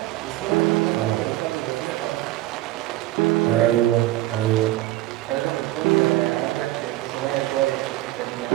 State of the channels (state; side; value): quieter; left; 16.3 dB